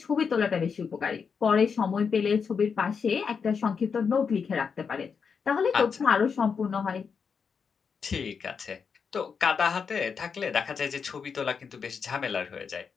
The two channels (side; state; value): right; quieter; 6.0 dB